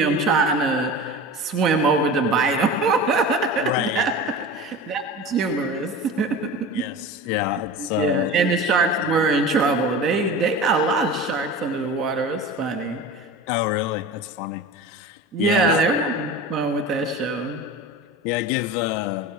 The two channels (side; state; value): both; normal; correlation 0.33